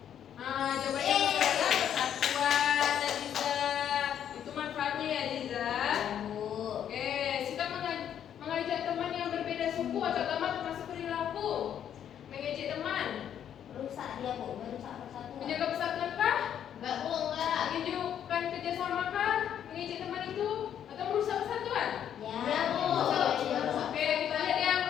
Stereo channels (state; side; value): quieter; right; 9.5 dB